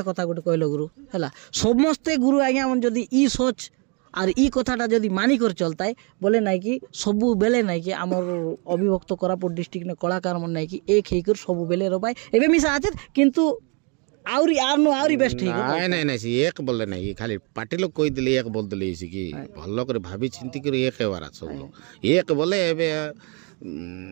कथा गोटे कहलो गुरु हैला समस्ते गुरु आज्ञा मन जदी ई सोच और ई कथाटा जदी मानी कर चलता है बोले नहीं कि सबु बेले नहीं कि हमर अभिभक्त कोरापुट डिस्ट्रिक्ट ने कलाकार मन नहीं कि एक हेकर सबु बेले रो भाई एबे मिसा आछे किंतु आउरी आरनो आउरी बेस्ट है नहीं नहीं नहीं एक बोले नहीं खाली पार्टी लोग कोई दिले एक बोल दिले इसी की भल्लो करे भाभी चिंती करे एक हेवारा सब लोग एक बोले एबे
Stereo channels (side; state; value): left; quieter; 34.3 dB